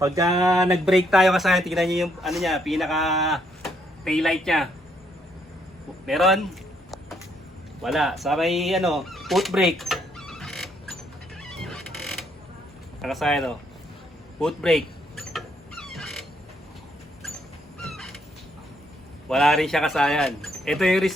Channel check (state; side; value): normal; both; correlation 0.72